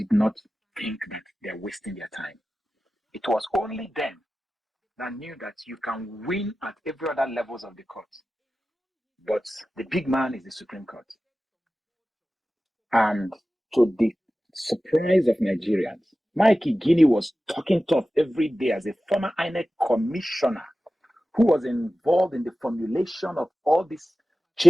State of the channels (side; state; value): both; normal; correlation 0.95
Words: not think that they're wasting their time. It was only them that knew that you can win at every other levels of the court. But the big man is the Supreme Court. And to the surprise of Nigerians, Mikey Guinea was talking tough every day as a former INEC commissioner who was involved in the formulation of all these